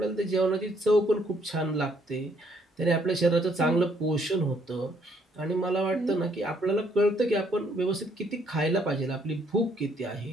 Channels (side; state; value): both; normal; correlation 0.68